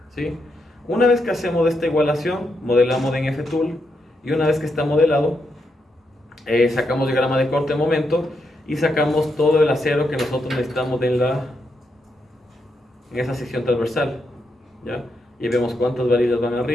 ¿sí? Una vez que hacemos esta igualación, modelamos en F-Tool, y una vez que está modelado, sacamos diagrama de corte de momento y sacamos todo el acero que nosotros necesitamos en esa sección transversal, ¿ya? Y vemos cuántas varillas van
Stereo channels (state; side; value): normal; both; correlation 0.82